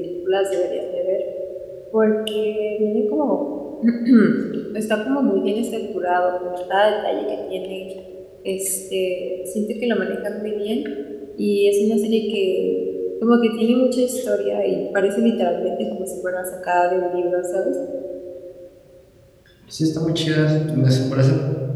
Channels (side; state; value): both; identical; correlation 1.00